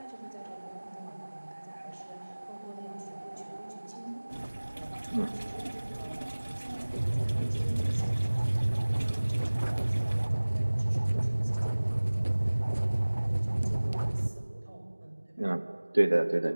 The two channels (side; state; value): both; inverted; correlation -1.00